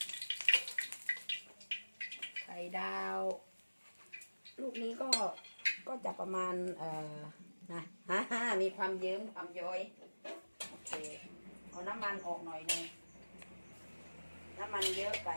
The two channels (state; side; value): inverted; both; correlation -1.00